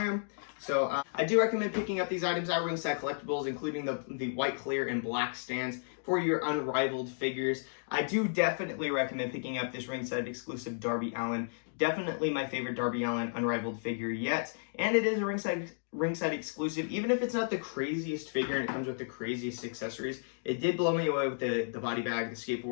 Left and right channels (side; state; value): right; silent; digital silence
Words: am. So I do recommend picking up these items at Ringside Collectibles, including the white, clear, and black stands for your unrivaled figures. I do definitely recommend picking up this Ringside exclusive Darby Allin. Definitely my favorite Darby Allin unrivaled figure yet. And it is a Ringside exclusive. Even if it's not the craziest figure and it comes with the craziest accessories, it did blow me away with the body bag, the